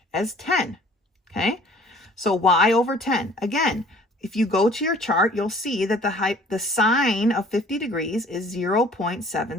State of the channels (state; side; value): normal; both; correlation 0.53